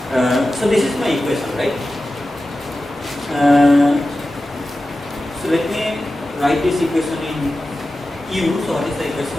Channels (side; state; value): both; normal; correlation 0.94